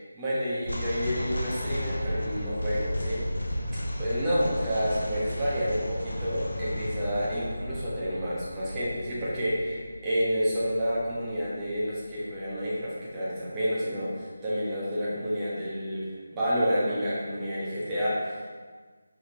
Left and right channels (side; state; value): both; inverted; correlation -0.92